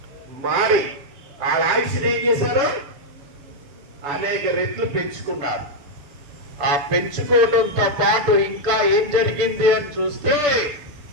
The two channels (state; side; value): late; left; 6.8 ms